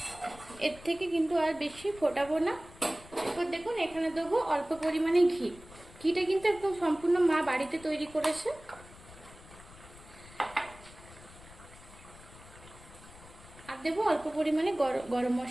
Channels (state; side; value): noise; left; rumble, 20 dB below the sound